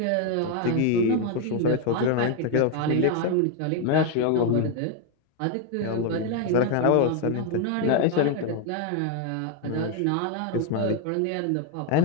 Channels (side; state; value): both; different; correlation 0.01